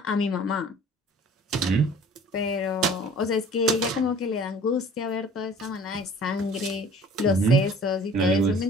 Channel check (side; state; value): both; normal; correlation 0.48